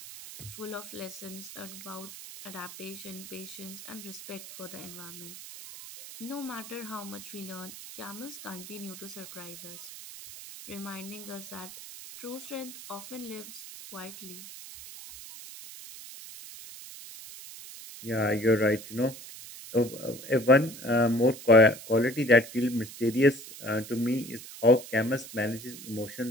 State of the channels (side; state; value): right; noise; hiss, 13 dB below the sound